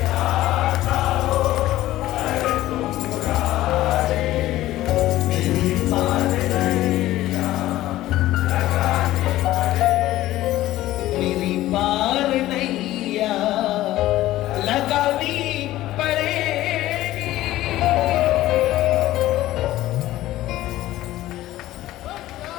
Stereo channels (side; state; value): right; quieter; 15.4 dB